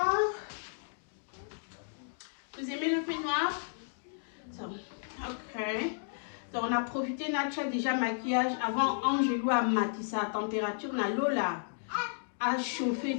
Vous aimez le peignoir? So, ok. Donc, on a profité, Nacha déjà maquillage. Avant, Angelou a maquillé sa température. On a l'eau là. à chauffer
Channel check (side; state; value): right; silent; digital silence